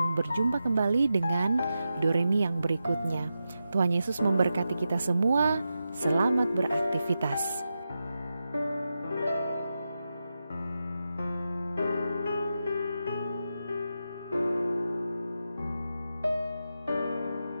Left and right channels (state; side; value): inverted; both; correlation -0.89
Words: berjumpa kembali dengan Doremi yang berikutnya. Tuhan Yesus memberkati kita semua. Selamat beraktivitas.